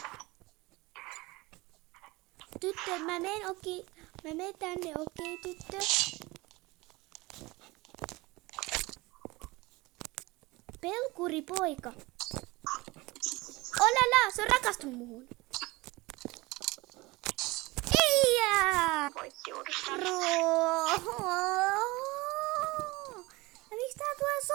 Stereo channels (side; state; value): left; quieter; 22.3 dB